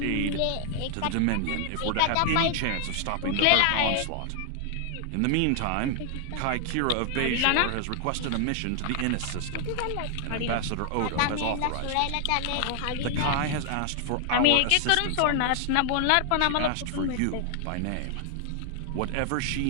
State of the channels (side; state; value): both; different; correlation 0.00